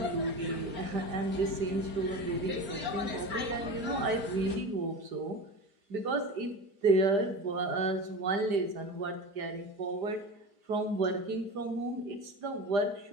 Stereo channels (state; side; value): late; left; 5.0 ms